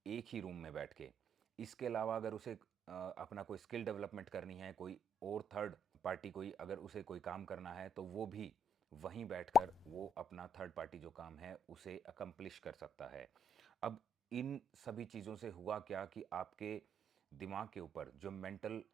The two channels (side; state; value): both; normal; correlation 0.70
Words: एक ही रूम में बैठ के। इसके अलावा अगर उसे अपना कोई स्किल डेवलपमेंट करनी है, कोई और थर्ड पार्टी कोई अगर उसे कोई काम करना है तो वो भी वहीं बैठकर वो अपना थर्ड पार्टी जो काम है उसे अकम्प्लिश कर सकता है। अब इन सभी चीज़ों से हुआ क्या कि आपके दिमाग के ऊपर जो मेंटल